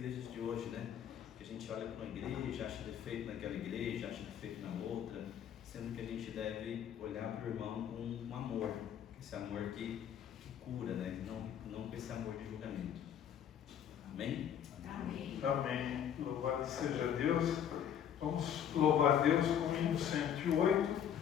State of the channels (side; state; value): right; quieter; 9.2 dB